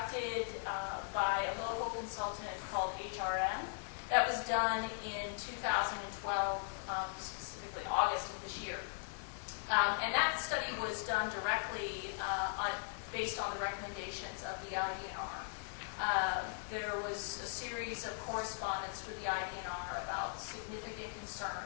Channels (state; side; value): silent; right; digital silence